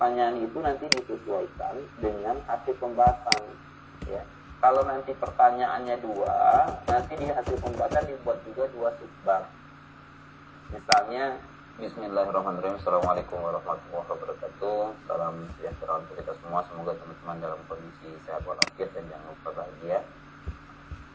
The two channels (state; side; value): identical; both; correlation 1.00